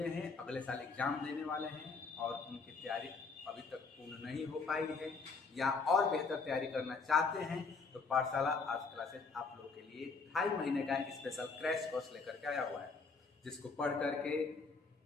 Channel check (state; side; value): quieter; right; 4.5 dB